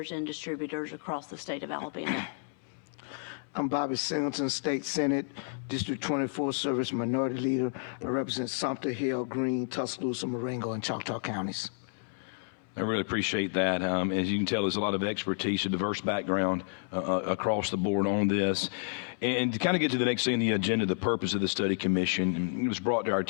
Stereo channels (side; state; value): right; silent; 57 dB below the other